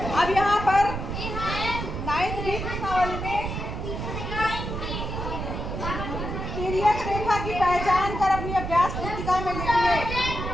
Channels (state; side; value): noise; right; rumble, 5 dB below the sound